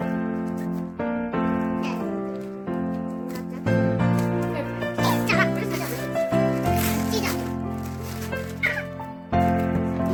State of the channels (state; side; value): identical; both; correlation 1.00